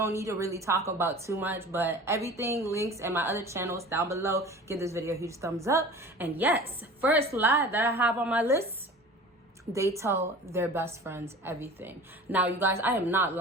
need to really talk about too much, but everything links in my other channels down below. Give this video a huge thumbs up. And yes, first lie that I have on my list: they tell their best friends everything. Now, you guys, I am not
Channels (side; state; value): both; normal; correlation 0.40